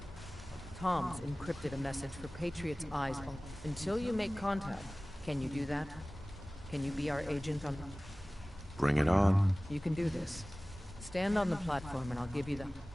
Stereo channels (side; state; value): both; normal; correlation 0.98